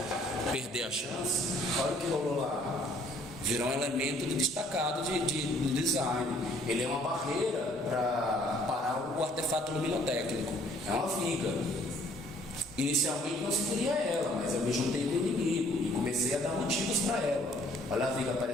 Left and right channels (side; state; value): both; normal; correlation 0.61